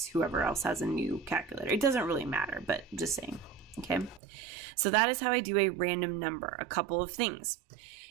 whoever else has a new calculator. It doesn't really matter, but just saying. Okay. So that is how I do a random number. A couple of things.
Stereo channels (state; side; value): drops out; left; at 4.2 s